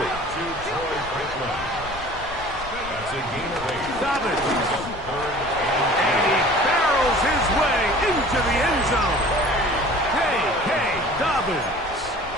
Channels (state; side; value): noise; left; rumble, 15 dB below the sound